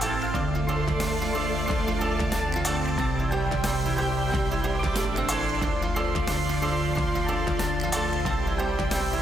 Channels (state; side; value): normal; both; correlation 0.80